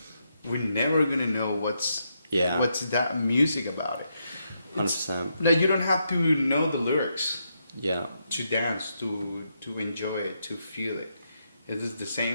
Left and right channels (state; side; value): inverted; both; correlation -0.80